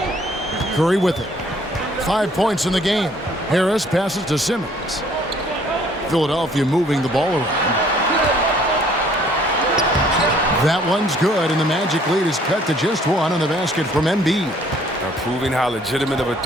Curry with it. 5 points in the game. Harris passes to Simmons. Philadelphia moving the ball around. That one's good, and the Magic lead is cut to just 1 on the basket from Embiid. Now proving how legitimate of a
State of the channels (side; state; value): both; normal; correlation 0.59